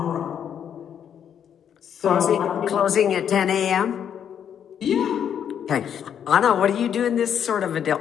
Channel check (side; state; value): right; quieter; 8.8 dB